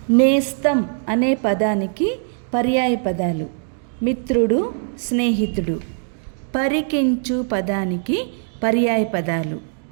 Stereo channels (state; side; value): silent; left; digital silence